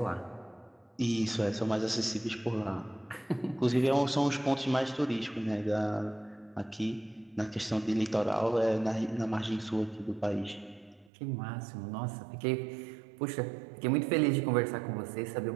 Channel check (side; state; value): left; drops out; at 11.1 s